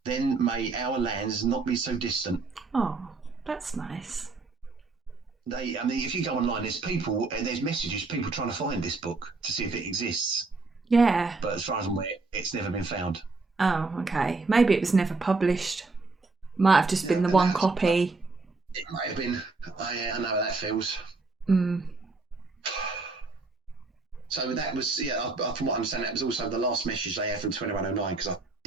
Then may our lands not be so distant." Oh, that's nice. If you go online, there's messages, people trying to find this book to see if it exists. Yeah. But as far as I'm aware, it's never been found. Oh, okay. Maybe it was never published. Might have just been the one copy. It might have been. I know how that feels. So that was, from what I understand, that was also the last message they had from 2109, because I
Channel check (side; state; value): left; quieter; 3.8 dB